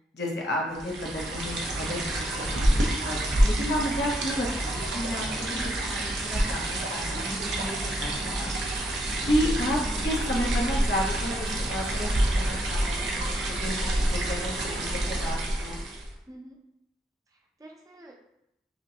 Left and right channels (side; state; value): both; normal; correlation 0.74